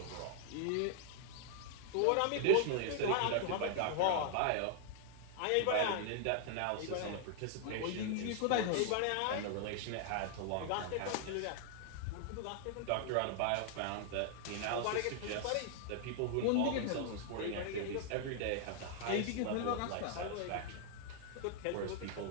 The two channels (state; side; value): different; both; correlation 0.00